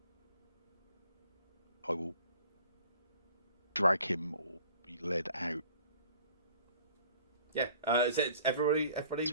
I will drag him or be led out. Yeah. Is it everybody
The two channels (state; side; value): inverted; both; correlation -0.52